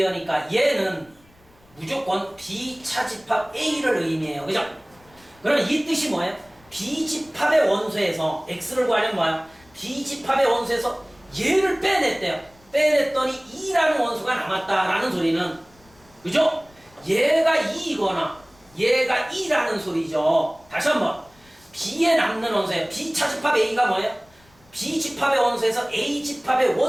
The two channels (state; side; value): noise; left; rumble, 29 dB below the sound